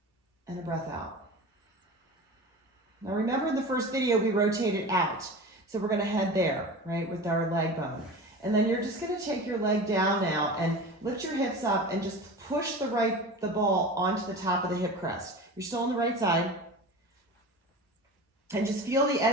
and a breath out. Now remember in the first video we rotated out. So we're going to head there, right, with our leg bone. And then you're just going to take your leg down now and lift your hips up and just push the ball onto the top of the hip crest. You're still on the right side. And just feel the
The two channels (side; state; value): both; normal; correlation 0.33